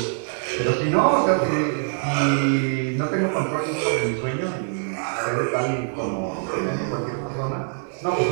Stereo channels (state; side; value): silent; left; 63 dB below the other